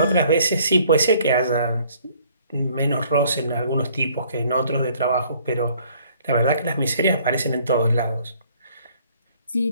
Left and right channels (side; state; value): both; inverted; correlation -0.60